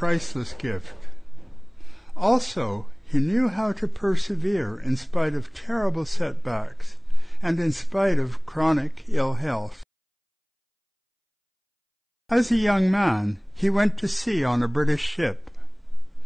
gift. Also, he knew how to persevere in spite of terrible setbacks and in spite of chronic ill health. As a young man, he went to sea on a British ship.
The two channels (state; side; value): identical; both; correlation 1.00